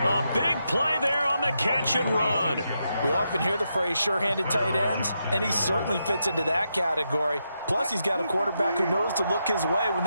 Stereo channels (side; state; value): both; inverted; correlation -0.84